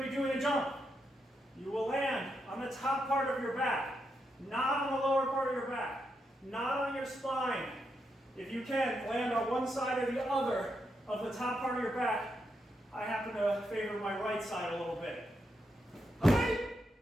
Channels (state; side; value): normal; both; correlation 0.82